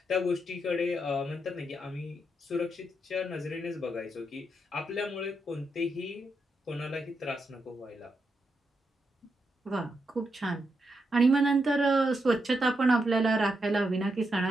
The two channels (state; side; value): normal; both; correlation 0.83